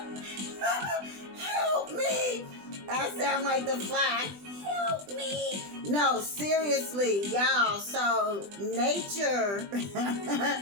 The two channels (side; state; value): left; late; 20 ms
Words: help me. I sound like the Fly. Help me. No, seriously, y'all. So nature